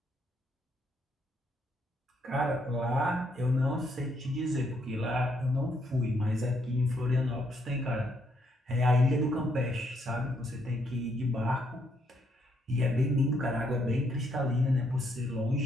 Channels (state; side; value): normal; both; correlation 0.73